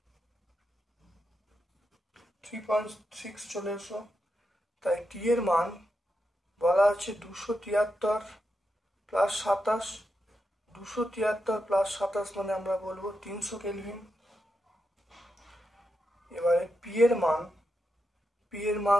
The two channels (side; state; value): both; normal; correlation 0.86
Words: 3.6 চলে এসো। তাই টি এর মান বলা আছে 273 প্লাস 27, 273 প্লাস 27 মানে আমরা বলবো 300 কেলভিন। এবারে পি এর মান